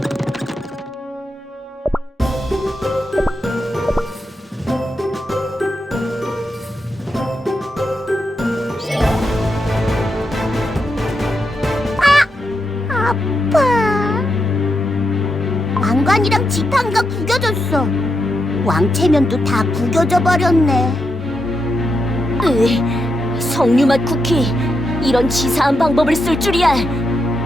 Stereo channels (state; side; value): normal; both; correlation 0.84